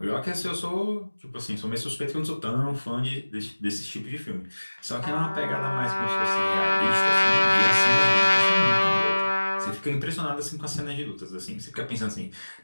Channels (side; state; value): both; inverted; correlation -1.00